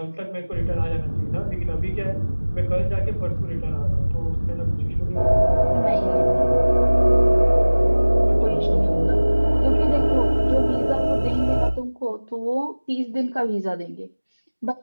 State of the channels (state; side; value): inverted; both; correlation -1.00